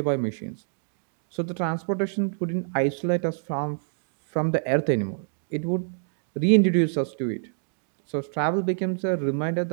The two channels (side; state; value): left; silent; digital silence